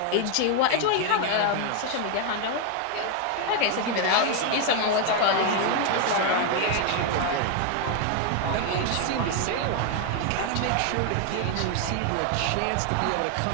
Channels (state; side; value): different; both; correlation 0.01